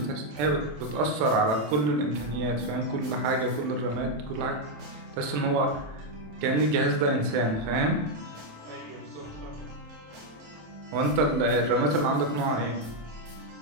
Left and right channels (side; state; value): left; late; 27 ms